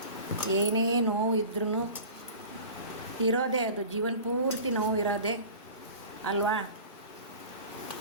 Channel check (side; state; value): both; inverted; correlation -0.39